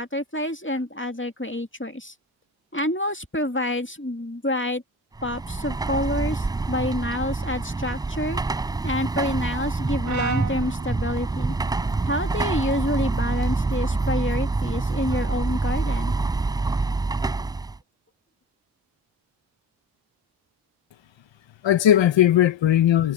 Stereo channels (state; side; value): normal; both; correlation 0.39